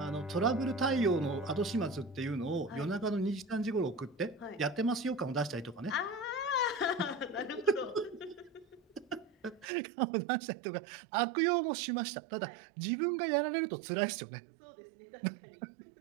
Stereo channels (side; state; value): left; drops out; at 9.7 s